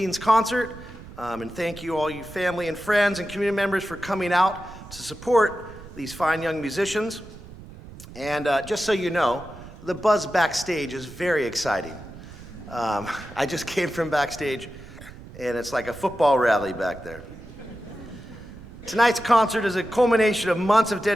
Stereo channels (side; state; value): right; noise; rumble, 16 dB below the sound